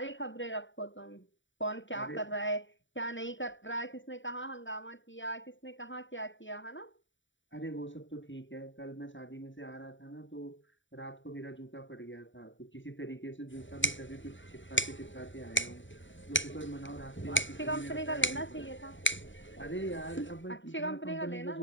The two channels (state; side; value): late; right; 0.55 ms